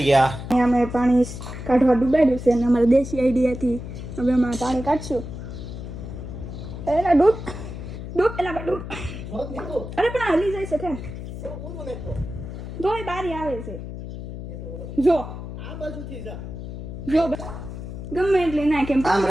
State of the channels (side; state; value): left; noise; hum, 9 dB below the sound